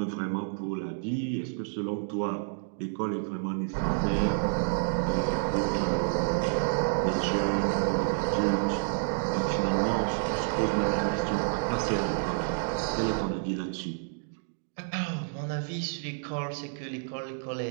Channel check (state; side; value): silent; left; digital silence